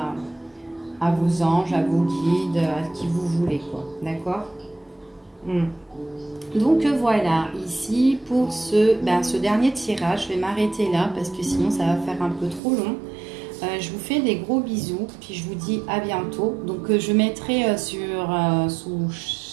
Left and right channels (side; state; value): left; drops out; at 12.6 s